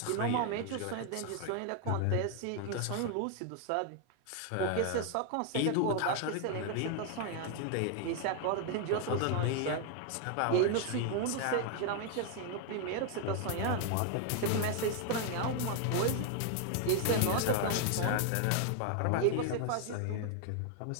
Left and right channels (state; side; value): different; both; correlation 0.00